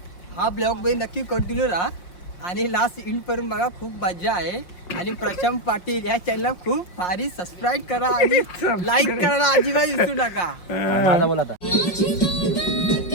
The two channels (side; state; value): right; late; 5.6 ms